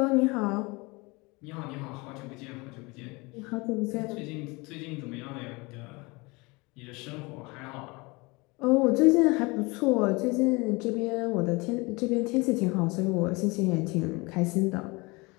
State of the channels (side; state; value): right; quieter; 25.7 dB